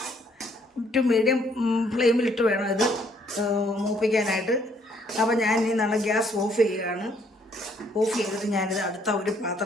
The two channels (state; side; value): normal; both; correlation 0.66